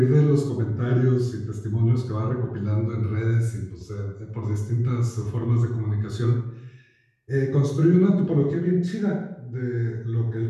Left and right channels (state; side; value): identical; both; correlation 1.00